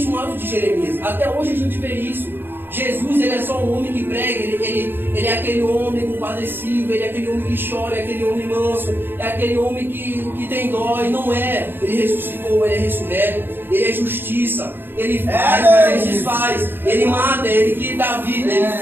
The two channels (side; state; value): left; late; 0.10 ms